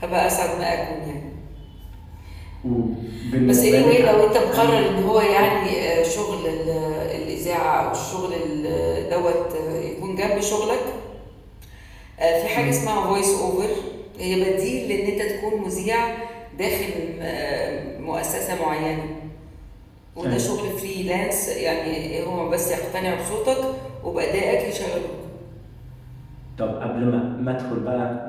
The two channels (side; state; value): both; identical; correlation 1.00